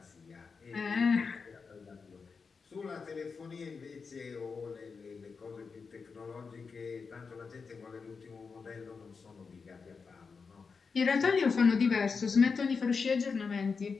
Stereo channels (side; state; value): right; quieter; 5.1 dB